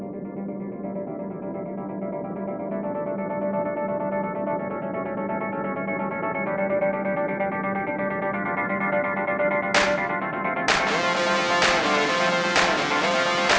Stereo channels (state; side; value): identical; both; correlation 1.00